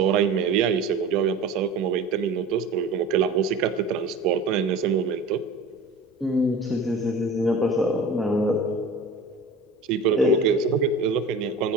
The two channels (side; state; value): left; quieter; 3.2 dB